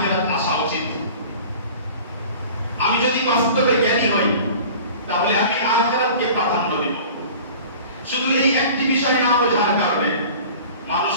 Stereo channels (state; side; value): inverted; both; correlation -0.42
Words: আসা উচিত। আমি যদি বাস্তবে জ্ঞানী হই তাহলে আমি আখিরাতকে প্রাধান্য দেব। শুধু এই একটি বিষয় না বোঝার কারণে মানুষ